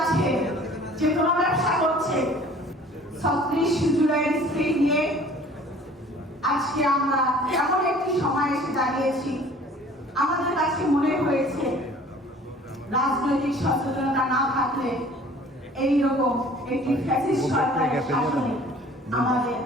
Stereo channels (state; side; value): normal; both; correlation 0.50